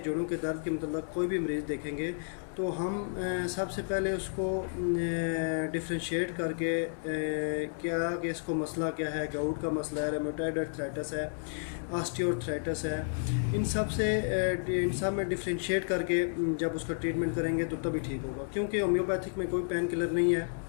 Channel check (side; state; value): right; silent; digital silence